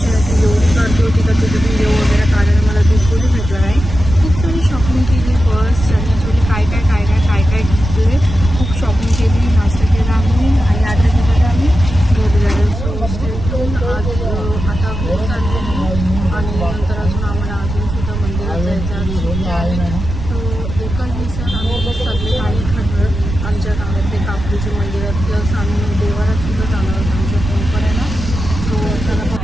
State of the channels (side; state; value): right; noise; rumble, 6 dB below the sound